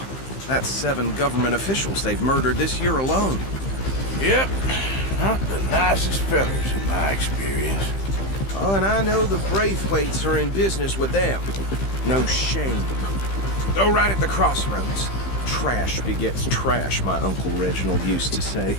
That's 7 government officials they've murdered this year alone. Yep. Not the nicest fellas in my experience. Oh, and I know the Braithwaites are in business with them. No shame. Go right at the crossroads. Trash begets trash, my Uncle Reginald used to say.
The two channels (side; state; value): right; late; 15 ms